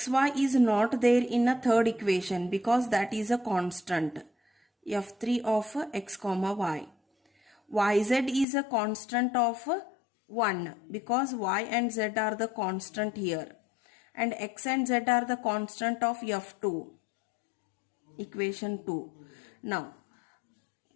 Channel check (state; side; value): drops out; right; at 8.5 s